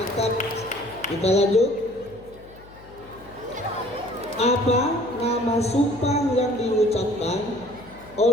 Kita lanjut. Apa nama sumpah yang diucapkan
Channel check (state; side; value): noise; left; hum, 22 dB below the sound